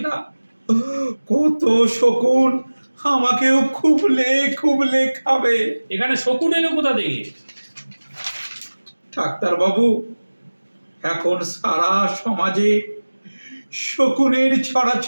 না কত শকুন আমাকেও খুবলে খুবলে খাবে। এখানে শকুন এলো কোথা থেকে? ডাক্তারবাবু, এখন সারা সমাজে শকুনের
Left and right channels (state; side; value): inverted; both; correlation -1.00